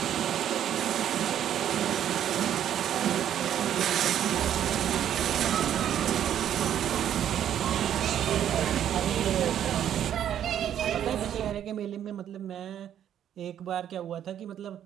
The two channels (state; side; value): quieter; left; 10.2 dB